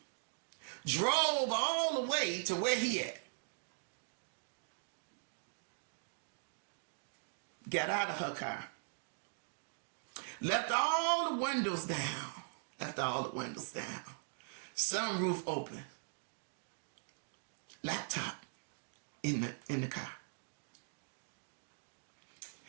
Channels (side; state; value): left; silent; digital silence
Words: drove all the way to where he at, got out of her car, left all the windows down, sunroof open, laptop in the car.